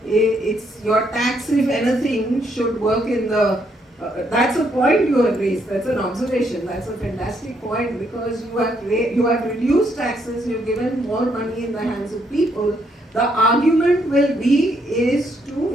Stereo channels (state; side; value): normal; both; correlation 0.73